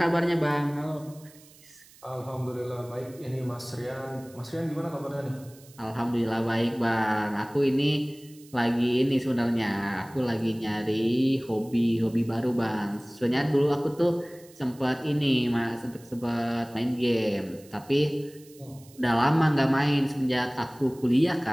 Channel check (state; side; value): noise; right; hiss, 24 dB below the sound